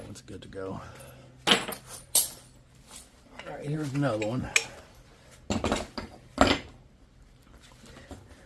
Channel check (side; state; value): both; identical; correlation 1.00